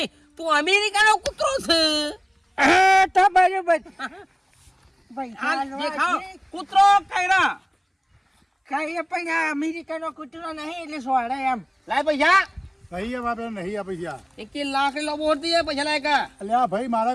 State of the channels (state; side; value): identical; both; correlation 1.00